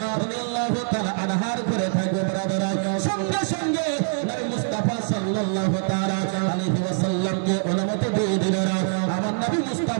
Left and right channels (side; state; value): left; silent; digital silence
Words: রাদিয়াল্লাহু তাআলা আনহার ঘরে থাকবো। ব্রাদারা সঙ্গে সঙ্গে নবী মুস্তাফা সাল্লাল্লাহু তাআলা আলাইহি ওয়াসাল্লামকে অনুমতি দিয়ে দিলেন। আমার নবী